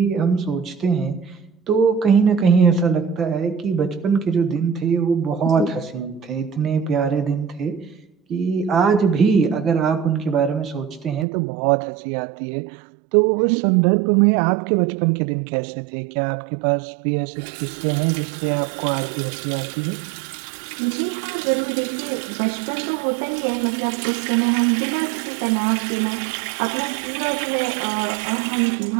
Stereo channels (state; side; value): drops out; left; at 11.2 s